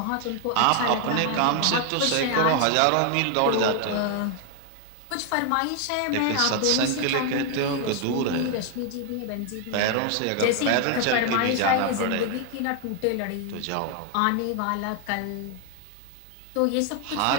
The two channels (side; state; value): both; different; correlation 0.00